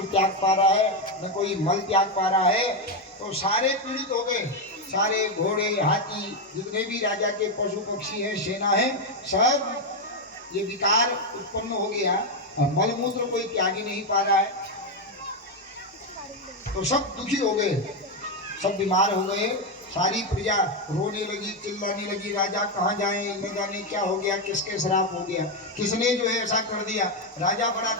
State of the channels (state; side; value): normal; both; correlation 0.06